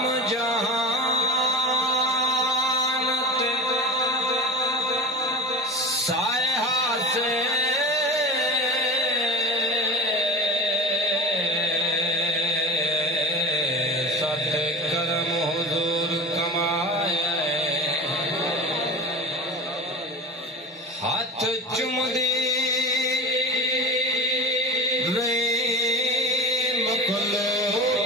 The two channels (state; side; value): normal; both; correlation 0.31